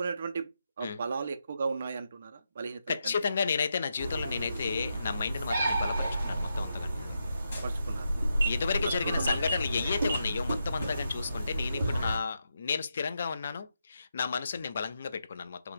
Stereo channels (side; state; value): both; inverted; correlation -0.85